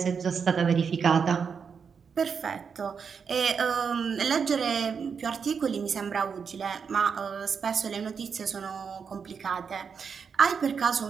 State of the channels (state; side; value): quieter; left; 6.2 dB